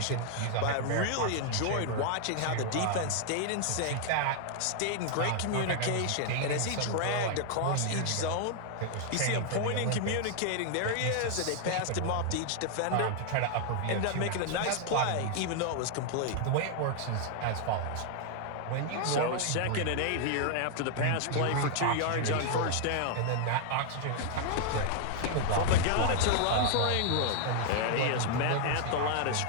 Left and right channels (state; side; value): different; both; correlation 0.00